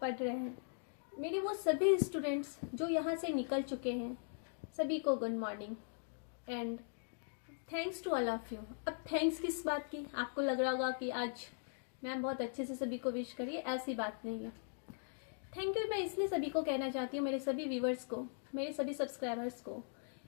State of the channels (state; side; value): silent; right; digital silence